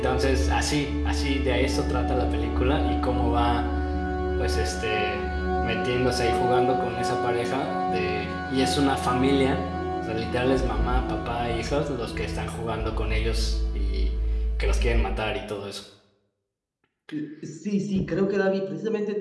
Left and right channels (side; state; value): both; identical; correlation 1.00